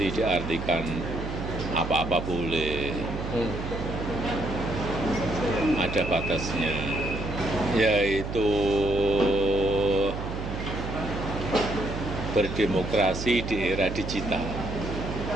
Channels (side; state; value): right; noise; hum, 5 dB below the sound